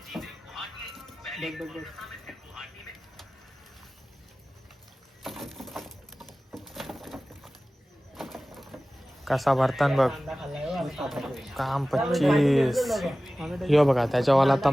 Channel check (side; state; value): both; normal; correlation 0.97